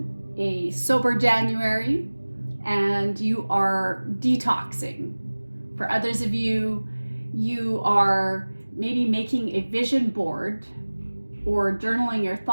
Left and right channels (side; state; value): both; inverted; correlation -1.00